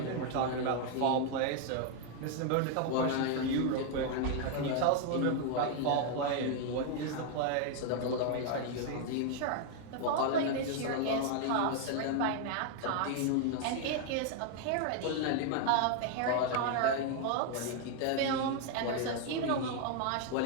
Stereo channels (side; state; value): both; different; correlation 0.00